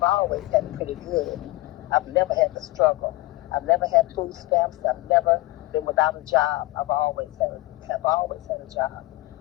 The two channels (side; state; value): right; quieter; 19.8 dB